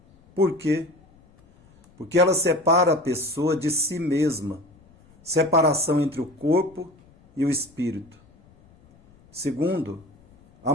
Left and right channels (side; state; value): left; noise; rumble, 29 dB below the sound